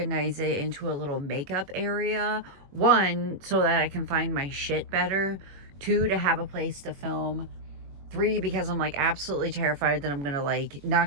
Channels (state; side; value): late; left; 21 ms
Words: it into a little makeup area. 1, so that I can find my shit better. 2, to have a place to film. 3, because I'm like absolutely terrified that I'm gonna like